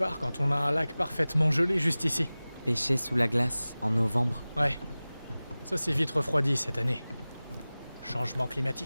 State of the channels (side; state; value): both; inverted; correlation -0.98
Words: quand on a un lac parfaitement gelé juste ici? Pêcher sous la glace, en novembre? Ouais, ça s'est vite refroidi cette année. Changement